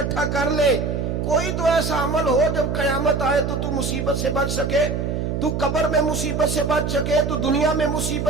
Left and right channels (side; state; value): right; noise; hum, 1 dB below the sound